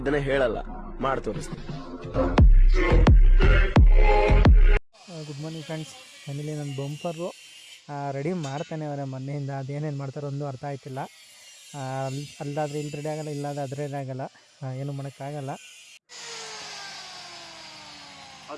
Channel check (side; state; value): both; identical; correlation 1.00